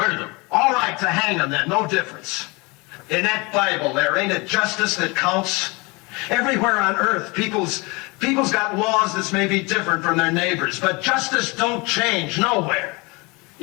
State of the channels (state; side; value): quieter; right; 26.7 dB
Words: them. All right, to hang them then, no difference. In that Bible there, ain't it justice that counts? Everywhere on earth, people's got laws that's maybe different from their neighbors, but justice don't change nowhere.